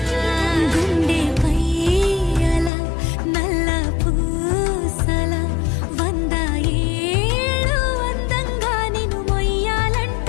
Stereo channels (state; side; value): drops out; right; at 2.7 s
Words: గుండెపై అలా నల్ల పూసల 100 ఏళ్ళు అందంగా నిన్ను